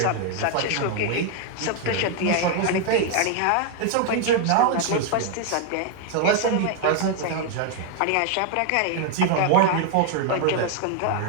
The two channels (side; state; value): both; different; correlation 0.00